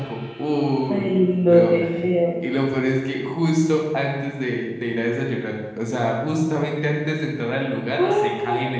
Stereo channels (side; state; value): both; identical; correlation 1.00